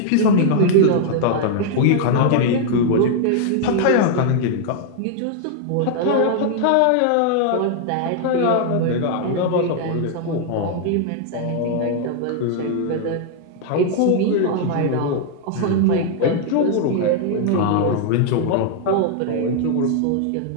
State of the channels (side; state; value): both; different; correlation 0.00